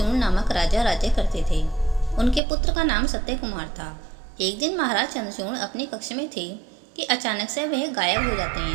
नामक राजा राज्य करते थे। उनके पुत्र का नाम सत्य कुमार था। एक दिन महाराज चंद्रचूड़ अपने कक्ष में थे कि अचानक से वह गायब हो जाते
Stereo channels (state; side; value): drops out; left; at 2.4 s